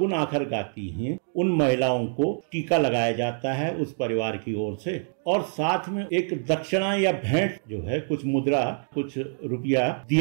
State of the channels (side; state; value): left; silent; 61 dB below the other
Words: आखर गाती हैं, उन महिलाओं को टीका लगाया जाता है उस परिवार की ओर से, और साथ में एक दक्षिणा या भेंट जो है, कुछ मुद्रा, कुछ रुपया